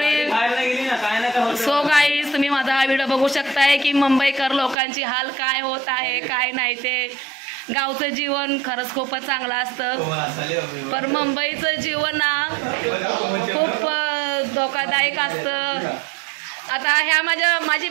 सो गाईज, तुम्ही माझा हा व्हिडिओ बघू शकताय की मुंबईकर लोकांची हाल काय होत आहे काय नाही ते. गावचं जीवन खरंच खूपच चांगलं असतं, पण मुंबईचं जीवन ना खूप धोकादायक असतं. आता ह्या माझी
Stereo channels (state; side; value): drops out; left; at 4.8 s